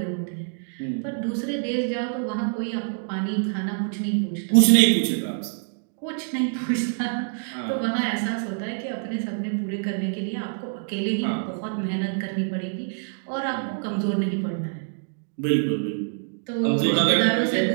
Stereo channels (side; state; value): left; silent; digital silence